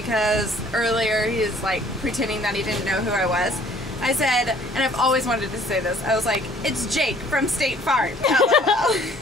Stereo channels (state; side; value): normal; both; correlation 0.56